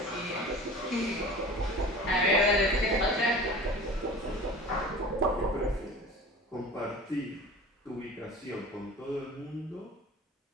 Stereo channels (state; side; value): normal; both; correlation 0.39